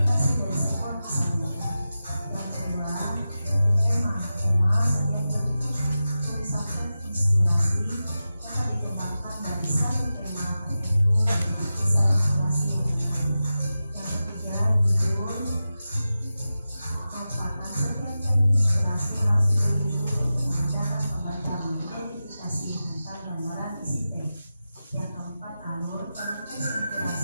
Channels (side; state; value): both; inverted; correlation -0.93